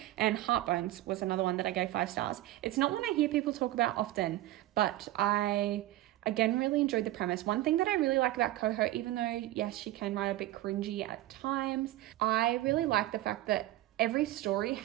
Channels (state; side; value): quieter; left; 15.7 dB